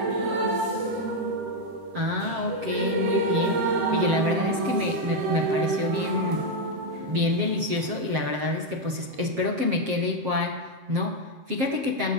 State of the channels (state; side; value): late; left; 7.5 ms